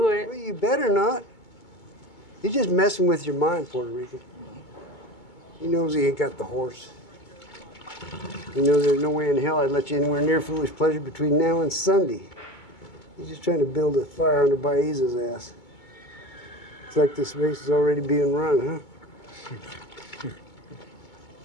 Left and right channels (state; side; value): late; right; 2.2 ms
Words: it. Well, you better not. He's just messing with your mind, Puerto Rican. He knows he ain't got the horse. He knows there's no way in hell I'd let you anywhere near Foolish Pleasure between now and Sunday. He's just trying to build a fire under Baeza's ass. It's like this race is already being run, huh?